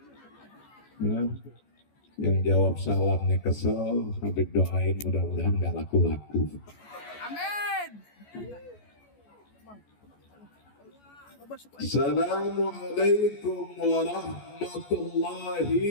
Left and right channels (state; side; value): late; right; 14 ms